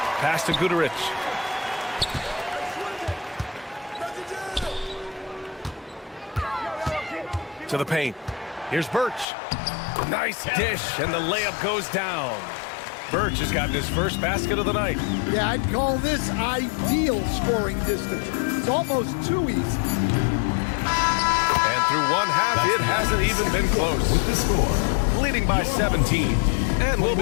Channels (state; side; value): drops out; right; at 9.2 s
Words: Pass to Gudarich. To the paint. Here's Birch. Nice dish, and the layup goes down. Birch has gotten his first basket of the night. Yeah, I'd call this ideal scoring distance. It's almost too easy. And through one half, it hasn't even been close. With the score, Leading by 17. And we'll